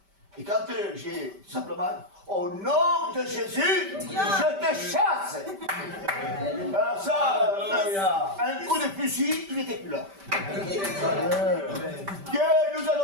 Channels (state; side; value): late; left; 5.1 ms